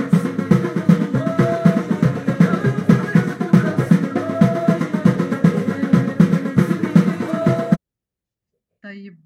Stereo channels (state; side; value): identical; both; correlation 1.00